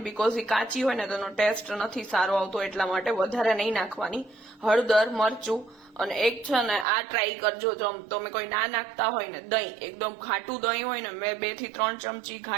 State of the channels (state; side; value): drops out; left; at 6.9 s